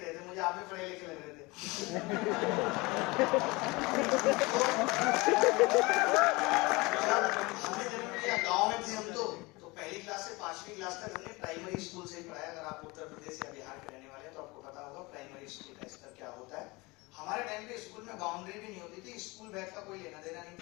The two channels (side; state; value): right; quieter; 24.1 dB